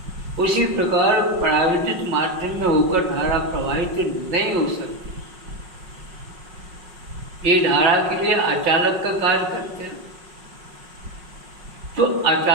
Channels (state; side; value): late; left; 5.5 ms